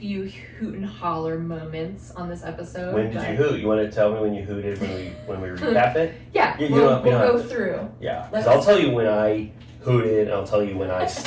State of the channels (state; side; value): identical; both; correlation 1.00